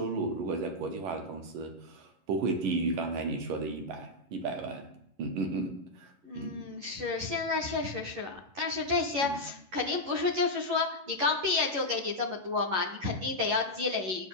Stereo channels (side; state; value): left; late; 11 ms